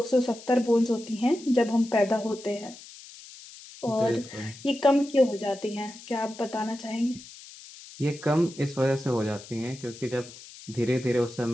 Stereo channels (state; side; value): noise; left; hiss, 18 dB below the sound